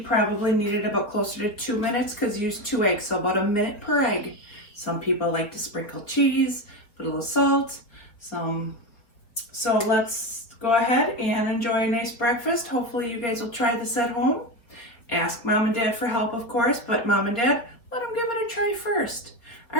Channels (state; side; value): late; right; 4.1 ms